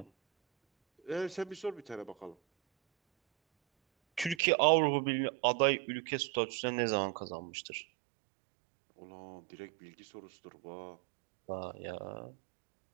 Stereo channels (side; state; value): left; drops out; at 4.4 s